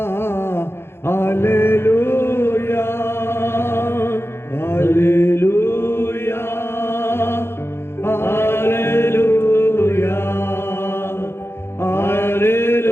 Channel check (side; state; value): right; late; 0.12 ms